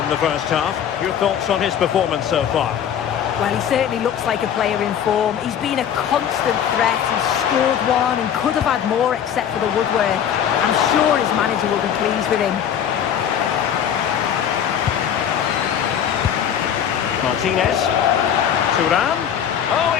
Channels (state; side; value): quieter; right; 9.0 dB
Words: the first half. Your thoughts on his performance so far? Well, he certainly looks like a player in form. He's been a constant threat. He's scored one and could have had more except for the woodwork. I'm sure his manager will be pleased with him. Martinez. Thuram. Oh,